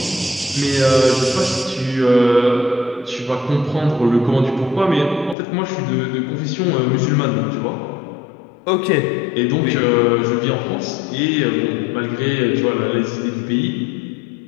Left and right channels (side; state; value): right; drops out; at 5.4 s